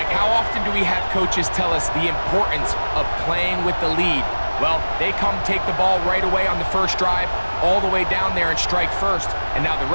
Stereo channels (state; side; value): inverted; both; correlation -1.00